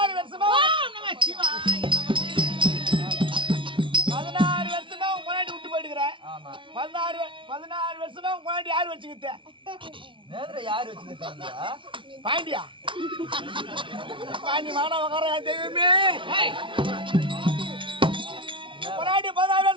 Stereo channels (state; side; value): late; left; 0.25 ms